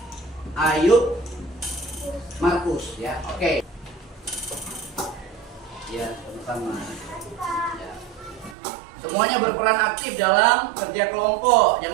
Ayub, Markus ya. Oke. Ya, sama-sama. Ya. Semuanya berperan aktif dalam kerja kelompok.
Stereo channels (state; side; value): drops out; left; at 8.6 s